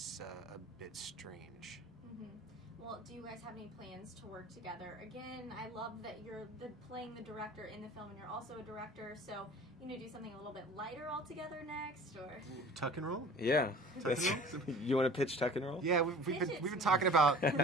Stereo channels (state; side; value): normal; both; correlation 0.43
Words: a bit strange. Mm-hmm. Well, do you guys have any plans to work together? Again, I love that you're playing the director in the film, and you're also a director, so you know, do something a little bit lighter altogether next, or Tuck and roll? Yeah. Tuck and roll? You want to pitch Tuck and Roll? Yeah, we've been talking about